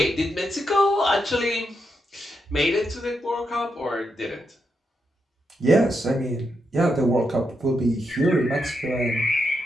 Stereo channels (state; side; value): normal; both; correlation 0.83